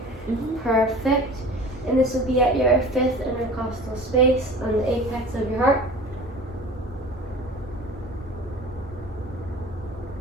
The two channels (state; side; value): normal; both; correlation 0.40